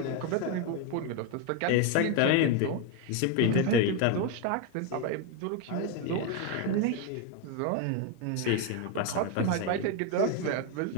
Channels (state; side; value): different; both; correlation 0.02